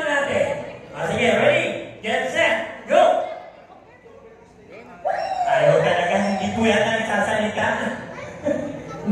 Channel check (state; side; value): identical; both; correlation 1.00